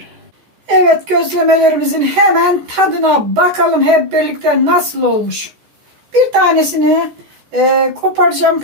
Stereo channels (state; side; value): late; left; 14 ms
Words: Evet, gözlemelerimizin hemen tadına bakalım hep birlikte nasıl olmuş. Bir tanesini koparacağım,